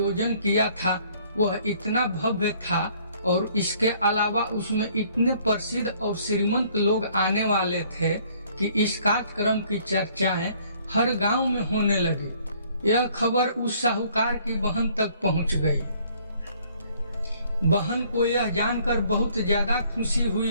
किया था वह इतना भव्य था और इसके अलावा उसमें इतने प्रसिद्ध और श्रीमंत लोग आने वाले थे कि इस कार्यक्रम की चर्चाएं हर गांव में होने लगी। यह खबर उस साहूकार की बहन तक पहुंच गई। बहन को यह जानकर बहुत ज्यादा खुशी हुई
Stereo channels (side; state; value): both; inverted; correlation -0.61